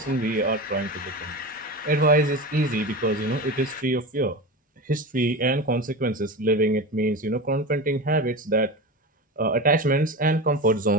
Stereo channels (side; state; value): both; normal; correlation 0.26